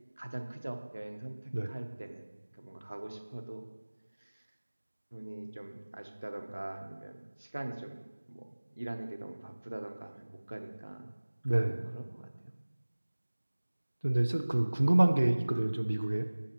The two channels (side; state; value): both; inverted; correlation -1.00